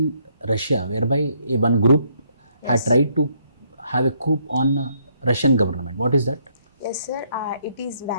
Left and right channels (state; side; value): inverted; both; correlation -0.70